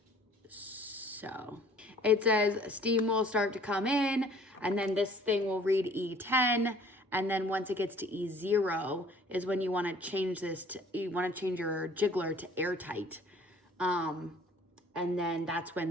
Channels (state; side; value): normal; both; correlation 0.54